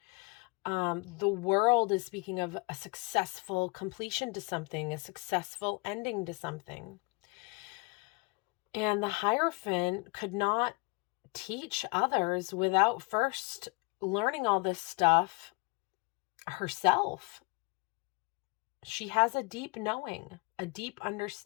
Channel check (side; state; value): right; quieter; 29.0 dB